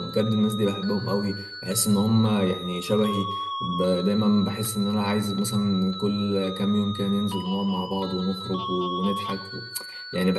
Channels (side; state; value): both; identical; correlation 1.00